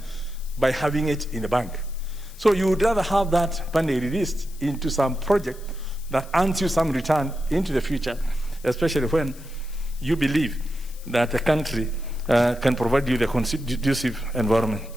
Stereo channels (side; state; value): left; noise; hiss, 21 dB below the sound